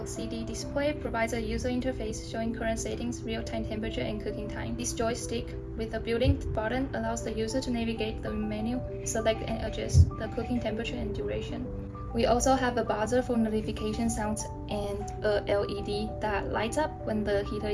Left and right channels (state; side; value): identical; both; correlation 1.00